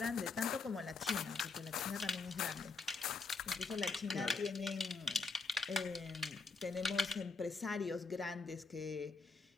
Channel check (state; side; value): quieter; right; 4.3 dB